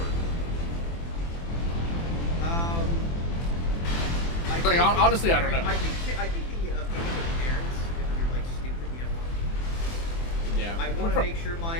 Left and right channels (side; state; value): right; late; 24 ms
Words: Like, honestly, I don't know. I think the opinion of parents, if you're like stupid, you have one. Yeah. I want to make sure